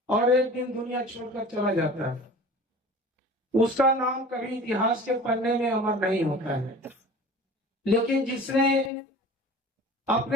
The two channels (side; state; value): both; normal; correlation 0.41